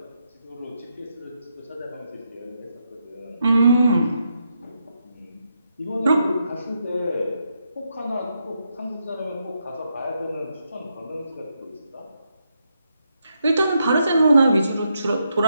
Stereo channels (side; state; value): both; inverted; correlation -0.81